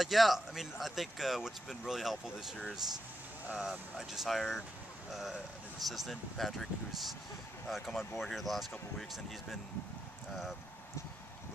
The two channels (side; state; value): both; normal; correlation 0.84